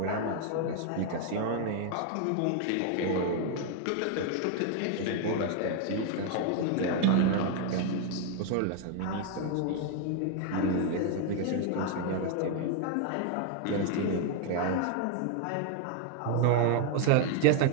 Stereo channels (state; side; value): different; both; correlation 0.00